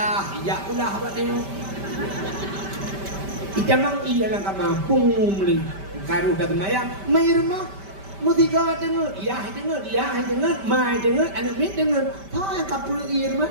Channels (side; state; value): left; late; 5.1 ms